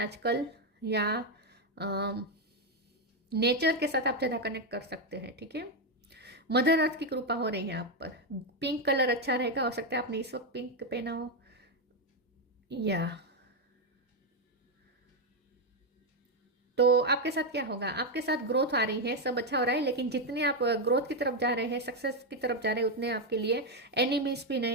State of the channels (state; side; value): normal; both; correlation 0.04